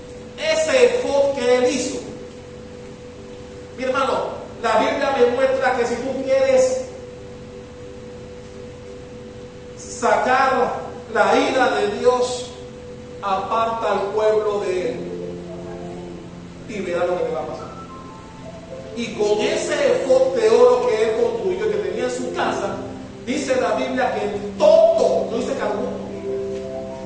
Ese efod que él hizo. Mi hermano, la Biblia me muestra que si tú quieres sacar la ira de Dios, aparta al pueblo de él y verá lo que te va a pasar. Y con ese efod de oro que él construyó, que tenía en su casa, dice la Biblia que todo, no dice que alguno,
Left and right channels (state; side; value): identical; both; correlation 1.00